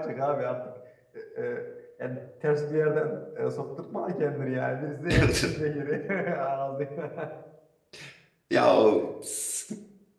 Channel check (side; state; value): both; identical; correlation 1.00